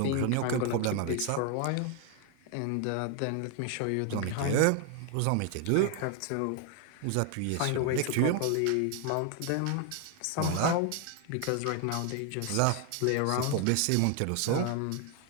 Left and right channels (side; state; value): both; different; correlation 0.00